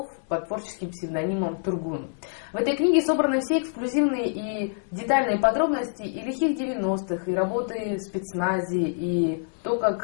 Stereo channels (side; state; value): right; silent; digital silence